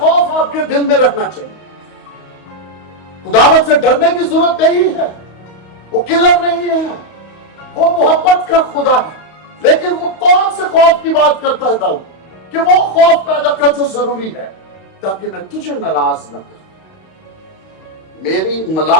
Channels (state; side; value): late; right; 31 ms